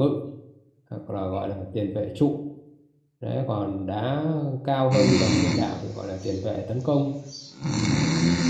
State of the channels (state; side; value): identical; both; correlation 1.00